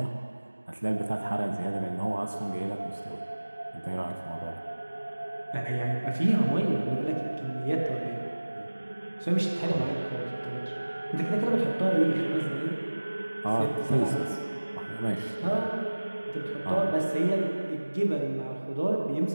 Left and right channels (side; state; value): both; inverted; correlation -1.00